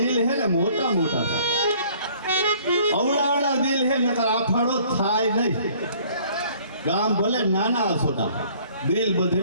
હે ને મોટા મોટા. અવડાવડા દિલ હે નકર આ ફાળો થાય નહીં. ગામ ભલે નાના સોટા દિલ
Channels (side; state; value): both; inverted; correlation -0.57